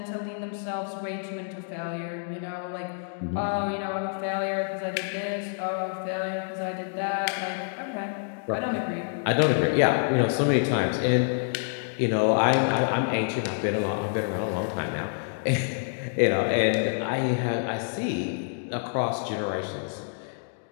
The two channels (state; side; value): silent; right; digital silence